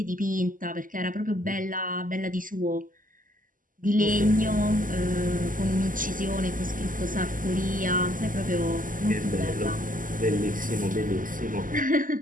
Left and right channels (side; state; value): left; late; 0.39 ms